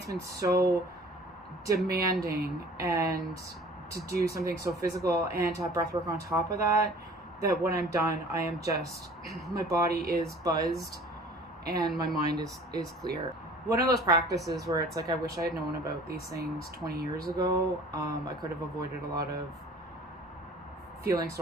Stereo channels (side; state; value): both; normal; correlation 0.48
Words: been so demanding, and to do something so physical and to have breath work on top of that, that when I'm done, I am just, my body is buzzed and my mind is clear. One of those practices where it's like, I wish I had known about these things 20 years ago. I could have avoided a lot of feeling